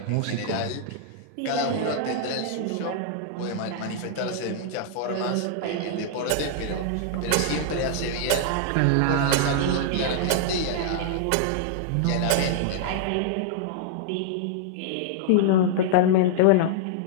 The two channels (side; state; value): both; different; correlation -0.01